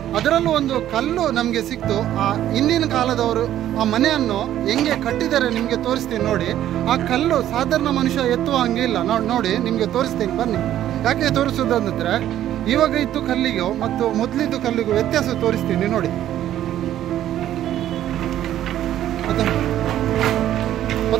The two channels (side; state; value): left; quieter; 12.1 dB